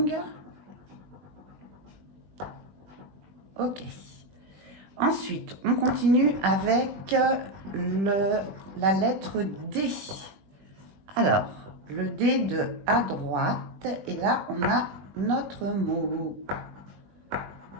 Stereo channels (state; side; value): late; left; 20 ms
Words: Ok. Ensuite, on continue avec la lettre D. Alors, le D de à droite. Et là, on a notre mot.